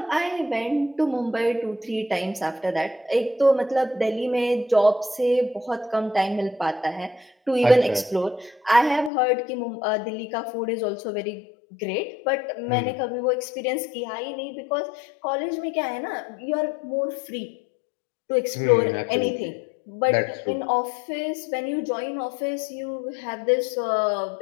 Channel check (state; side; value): drops out; right; at 9.1 s